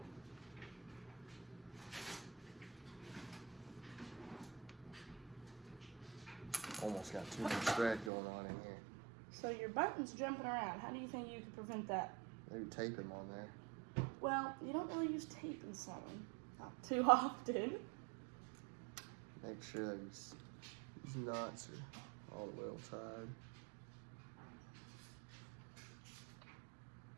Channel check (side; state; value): left; drops out; at 8.1 s